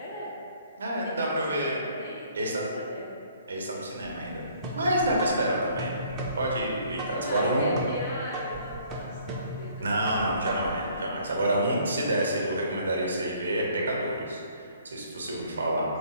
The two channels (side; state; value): both; inverted; correlation -0.59